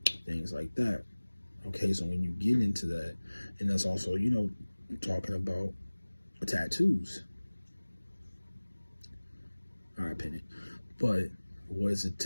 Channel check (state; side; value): inverted; both; correlation -1.00